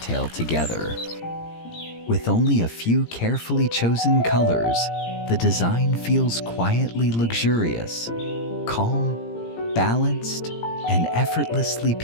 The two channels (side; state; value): right; late; 17 ms